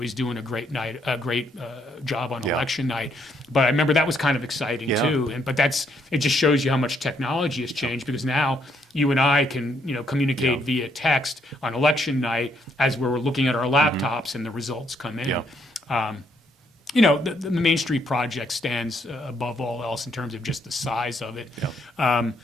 doing a great job on election night. But I remember that was kind of exciting too. But it just shows you how much technology has changed, because now you and I can communicate via text on election night as we're looking at our laptops and the results come in. The Main Street project stands above all else in terms of just the size of it. I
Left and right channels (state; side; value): normal; both; correlation 0.72